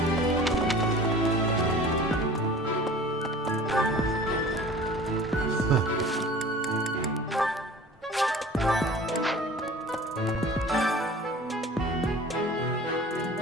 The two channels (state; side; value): normal; both; correlation 0.43